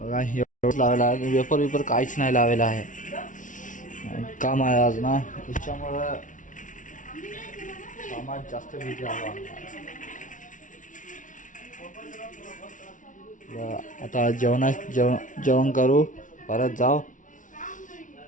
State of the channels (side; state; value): right; late; 0.37 ms